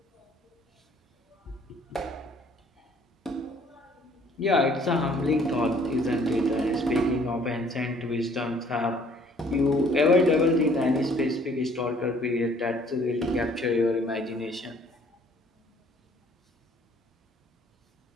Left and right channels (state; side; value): normal; both; correlation 0.59